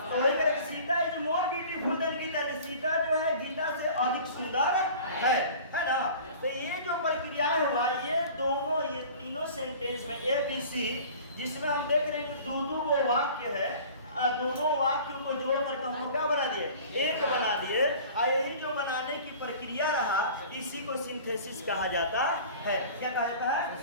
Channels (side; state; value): both; inverted; correlation -0.43